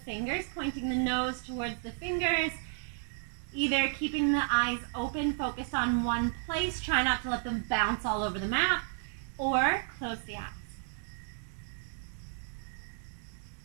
fingers, pointing the nose towards the fingers, either keeping the eyes open, focused on one place, try not to let them bounce all over the mat, or close the eyes.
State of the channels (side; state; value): left; silent; 56 dB below the other